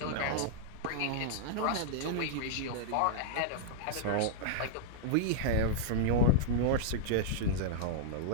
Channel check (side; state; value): both; different; correlation -0.02